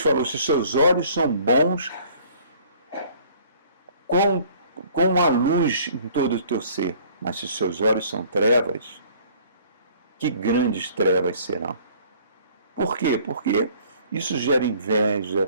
se seus olhos são bons, com a luz em todo o teu ser, mas se seus olhos são trevas, que grandes trevas serão. Por quê? Porque isso gera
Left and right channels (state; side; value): inverted; both; correlation -0.55